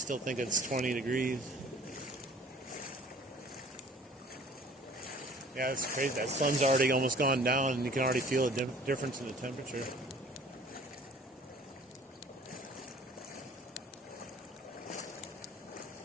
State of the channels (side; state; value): both; normal; correlation 0.51